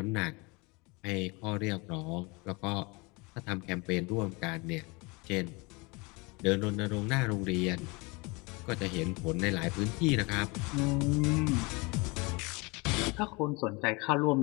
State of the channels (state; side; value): quieter; right; 27.2 dB